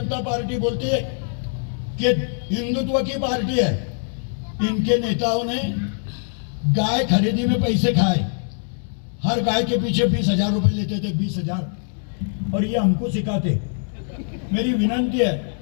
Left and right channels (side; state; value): right; silent; digital silence